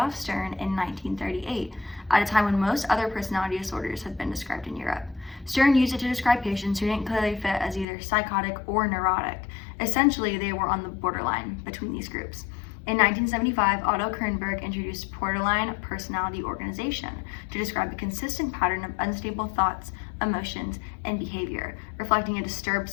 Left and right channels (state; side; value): drops out; right; at 7.9 s